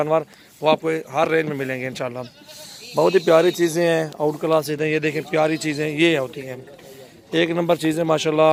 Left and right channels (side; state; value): both; identical; correlation 1.00